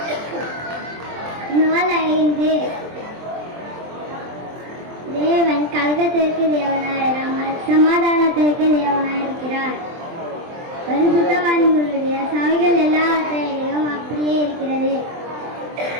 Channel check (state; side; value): late; left; 23 ms